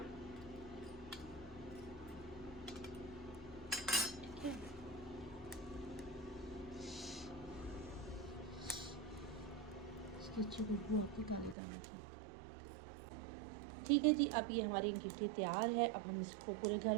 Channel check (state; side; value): drops out; left; at 11.6 s